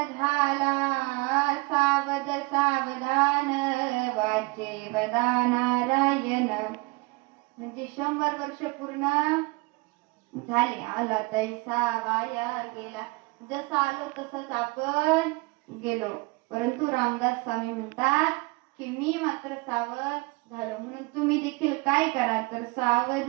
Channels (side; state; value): left; quieter; 25.7 dB